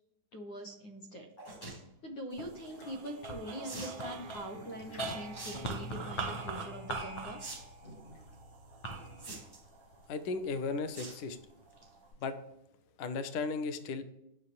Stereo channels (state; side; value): late; right; 9.7 ms